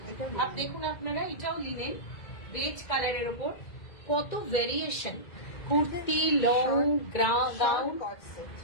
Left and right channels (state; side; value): late; right; 2.1 ms